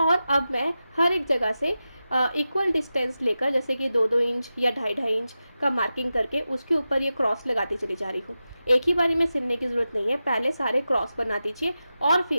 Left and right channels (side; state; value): both; inverted; correlation -0.92